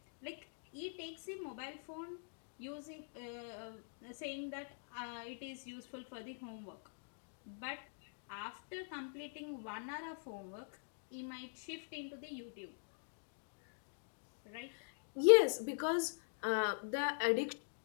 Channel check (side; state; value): right; silent; digital silence